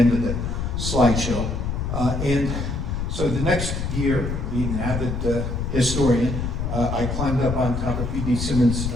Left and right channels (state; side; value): noise; left; rumble, 2 dB below the sound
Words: of the slideshow. And so the next year, being an avid historian, I climbed up on top of B.D. Simmons'